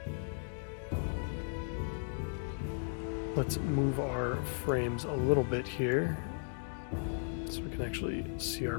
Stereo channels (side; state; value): right; silent; digital silence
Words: Let's move our frames a little bit here so we can actually see